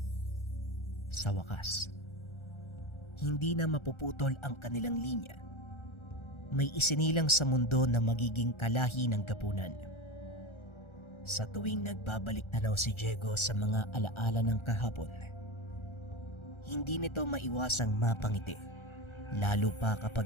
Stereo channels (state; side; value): late; right; 1.4 ms